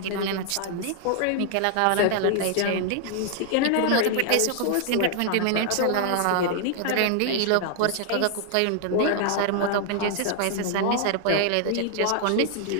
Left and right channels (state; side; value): different; both; correlation 0.00